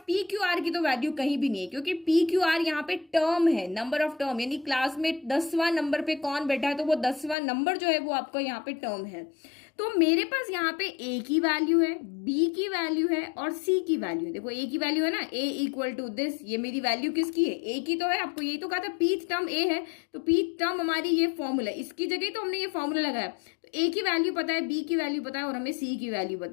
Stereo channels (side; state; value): right; drops out; at 7.4 s